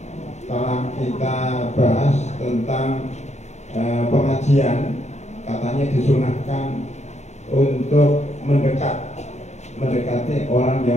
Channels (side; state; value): right; late; 0.33 ms